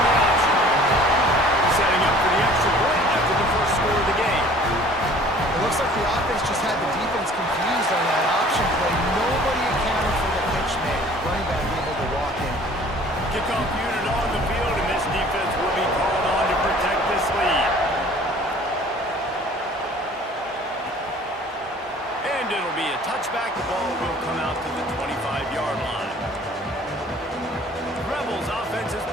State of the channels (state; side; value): normal; both; correlation 0.51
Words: And it'll be a touchback. The ball will come out to the 25-yard line. Rebels offense is